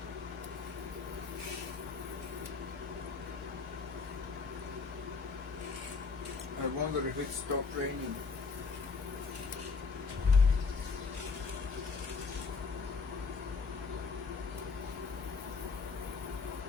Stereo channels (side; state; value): right; quieter; 4.7 dB